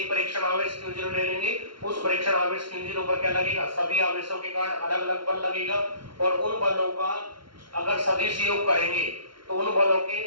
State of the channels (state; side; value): late; left; 0.73 ms